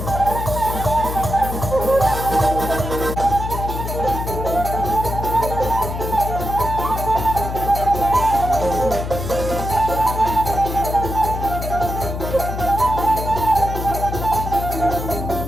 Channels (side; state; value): left; noise; hum, 5 dB below the sound